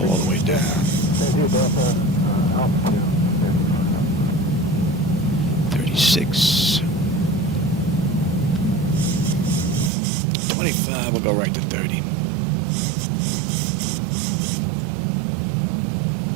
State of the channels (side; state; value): left; drops out; at 9.9 s